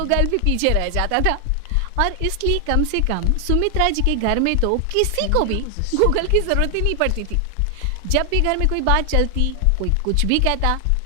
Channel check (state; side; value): different; both; correlation 0.00